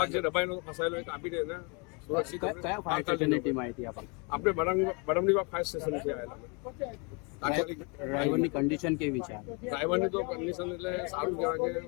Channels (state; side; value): quieter; right; 32.6 dB